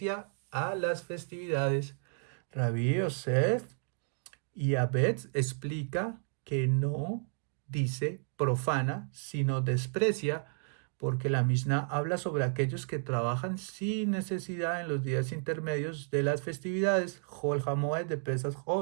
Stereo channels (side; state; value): left; silent; 56 dB below the other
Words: a las festividades. Rabí Yosef y Abed explica que no dice profana, sino desprecia, porque la Mishnah habla sobre aquellos que trabajan sin necesidad en los días intermedios de las festividades, Jol Hamoed de Pesach